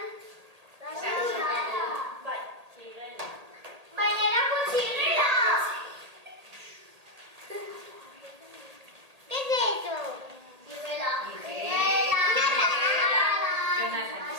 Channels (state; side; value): late; left; 1.8 ms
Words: Bai, txirela. Baina erako txirela! ¿Qué es eso? Txirela. Jonathan